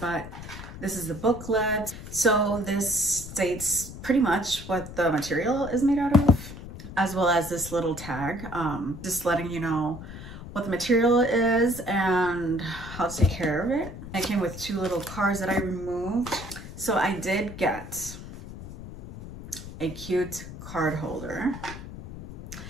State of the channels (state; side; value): noise; left; rumble, 12 dB below the sound